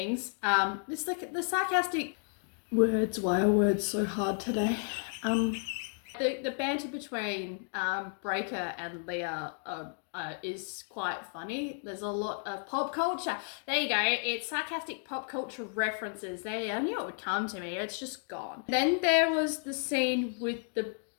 It's like the sarcastic words. Why are words so hard today? The banter between Breaker and Leah is quite funny. There's a lot of pop culture. There you go. It's sarcastic pop culture references. I knew it would come to me. It's just gone. Then there was the scene with the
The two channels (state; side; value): silent; right; 56 dB below the other